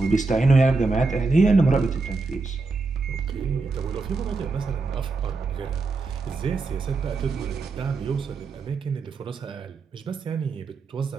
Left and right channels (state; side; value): quieter; left; 3.8 dB